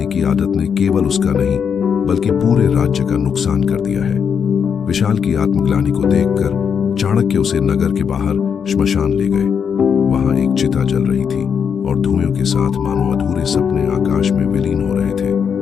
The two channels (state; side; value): quieter; right; 7.0 dB